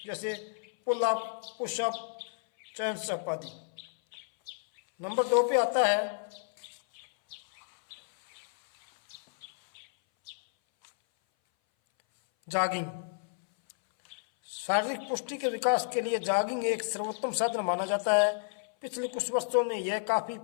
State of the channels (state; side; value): silent; right; 57 dB below the other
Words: जैसे pull up, push up, chest up आदि। नंबर 2 पे आता है जॉगिंग। शारीरिक पुष्टि के विकास के लिए जॉगिंग एक सर्वोत्तम साधन माना जाता है। पिछले कुछ वर्षों में यह काफी